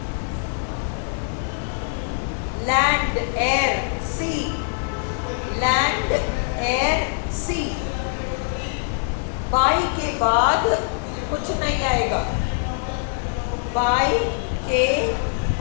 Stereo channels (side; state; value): right; silent; digital silence